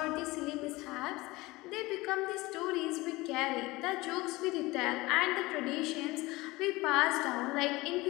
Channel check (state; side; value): quieter; right; 21.0 dB